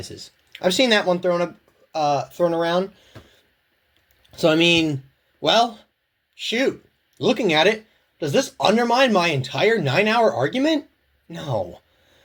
I've seen that one thrown around. So, I mean, well, shoot. Looking at it, does this undermine my entire 9-hour argument? No.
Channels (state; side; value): identical; both; correlation 1.00